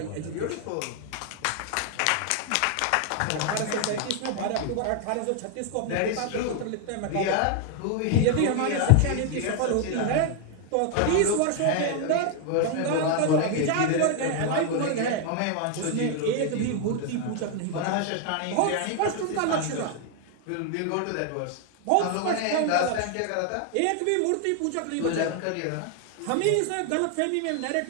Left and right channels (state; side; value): different; both; correlation 0.00